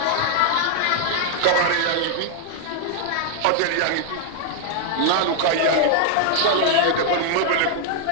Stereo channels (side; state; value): both; different; correlation -0.01